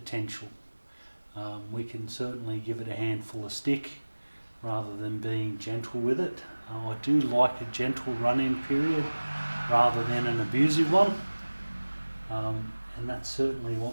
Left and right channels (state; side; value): inverted; both; correlation -1.00